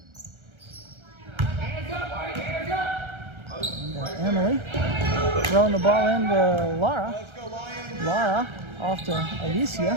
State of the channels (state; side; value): late; left; 1.3 ms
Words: Emily throwing the ball into Lara. Lara off to